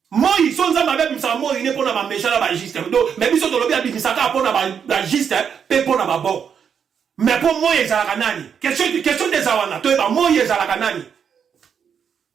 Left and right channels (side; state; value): left; quieter; 7.4 dB